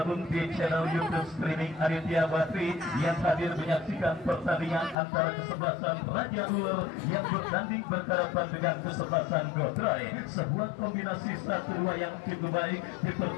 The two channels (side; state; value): right; drops out; at 5.0 s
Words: di channel YouTube streaming Aditya Bakri yang hadir menyaksikan pertandingan antara kesebelasan Raja Ular yang bertanding berhadapan dengan kesebelasan Gotroy. Sebuah kombinasi 1-2 yang cukup baik